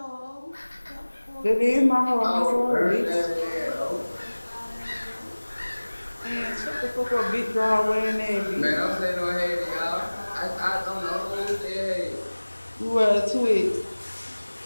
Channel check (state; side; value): inverted; both; correlation -1.00